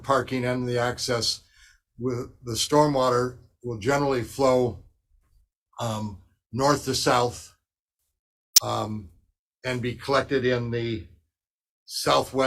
and the access, with the stormwater will generally flow north to south and be collected in the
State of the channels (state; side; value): identical; both; correlation 1.00